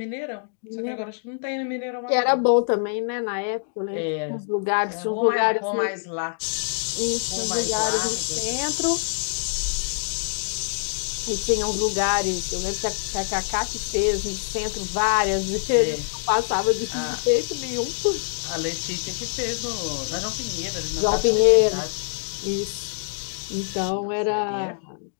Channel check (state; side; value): silent; right; digital silence